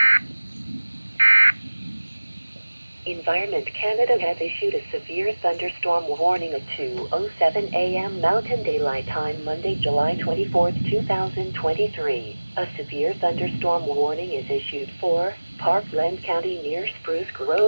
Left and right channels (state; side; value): inverted; both; correlation -1.00